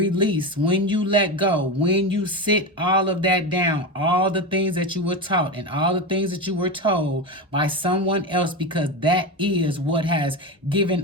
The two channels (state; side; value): normal; both; correlation 0.18